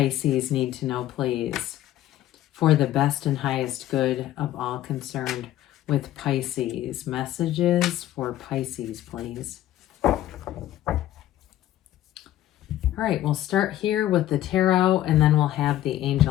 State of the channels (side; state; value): right; quieter; 13.5 dB